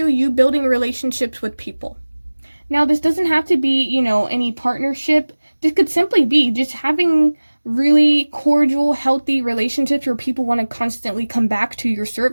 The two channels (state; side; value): inverted; both; correlation -1.00